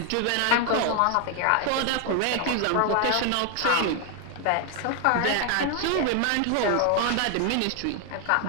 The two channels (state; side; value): different; both; correlation 0.00